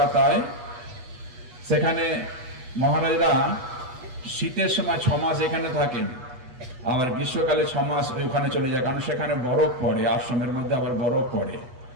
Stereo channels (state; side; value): late; left; 8.3 ms